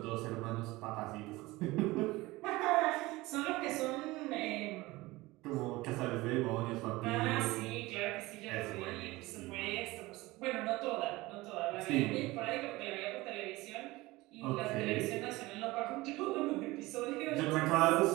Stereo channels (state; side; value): quieter; left; 20.4 dB